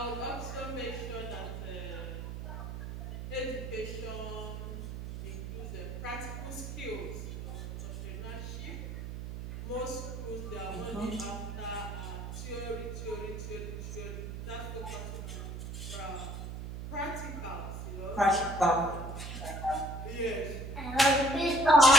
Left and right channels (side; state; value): right; noise; hum, 6 dB below the sound